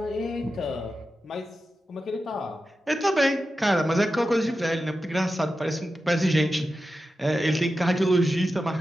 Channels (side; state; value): both; normal; correlation 0.91